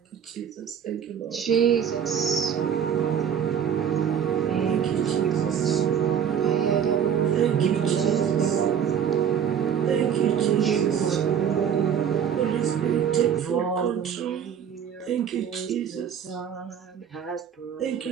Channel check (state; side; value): quieter; left; 8.4 dB